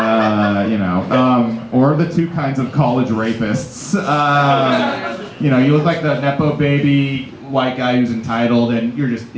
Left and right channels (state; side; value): identical; both; correlation 1.00